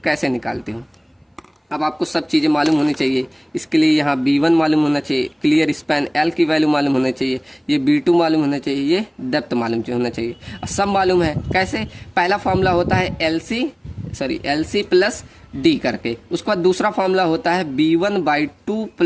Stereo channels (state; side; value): identical; both; correlation 1.00